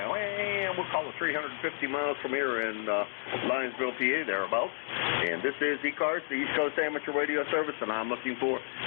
we'll call it 350 miles from here in Lionsville, PA, thereabouts. And this is ECARS, the East Coast Amateur Radio Service, and I'm looking for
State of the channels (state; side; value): silent; right; digital silence